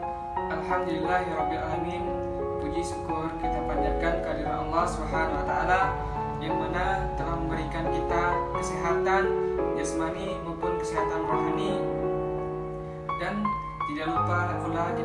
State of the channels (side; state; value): both; identical; correlation 1.00